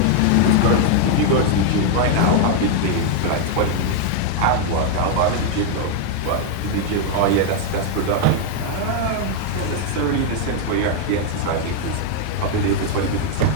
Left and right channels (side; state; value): both; different; correlation 0.00